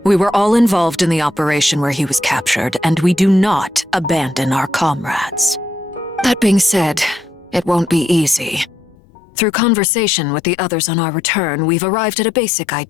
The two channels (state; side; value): drops out; right; at 9.0 s